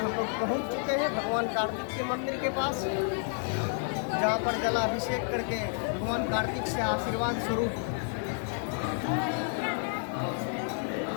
लोग पहुँच चुके हैं भगवान कार्तिक के मंदिर के पास, जहाँ पर जलाभिषेक करके भगवान कार्तिक से आशीर्वाद स्वरूप।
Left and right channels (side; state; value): right; silent; 58 dB below the other